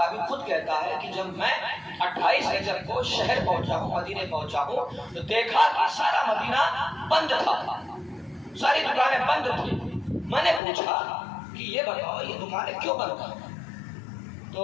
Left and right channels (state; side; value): drops out; right; at 10.6 s